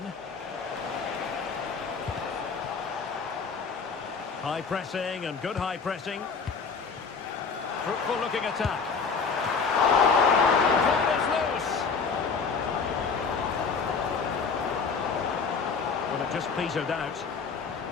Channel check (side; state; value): right; quieter; 5.3 dB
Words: High pressing and good high pressing. Fruitful looking attack. Ball is loose. Well, it just petered out.